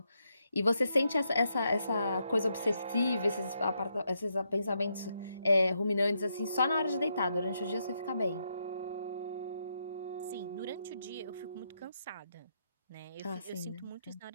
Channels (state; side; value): inverted; both; correlation -0.80